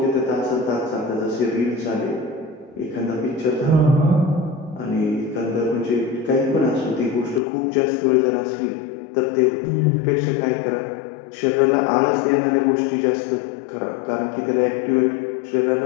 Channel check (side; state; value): right; drops out; at 7.4 s